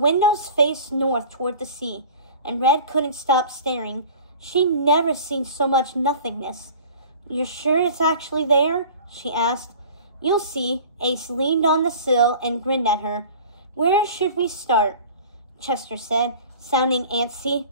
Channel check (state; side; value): inverted; both; correlation -0.43